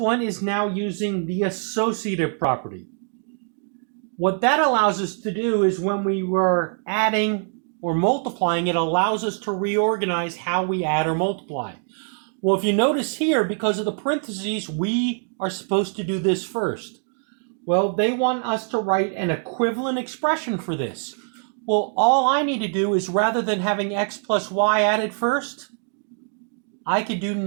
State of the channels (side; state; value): left; silent; 56 dB below the other